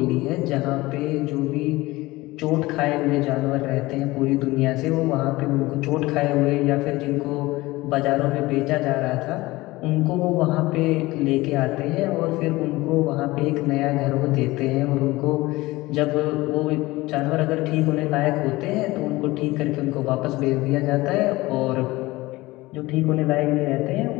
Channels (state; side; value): quieter; right; 19.8 dB